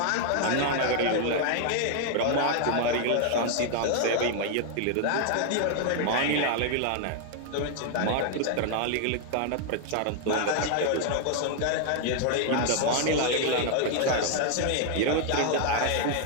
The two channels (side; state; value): both; different; correlation 0.00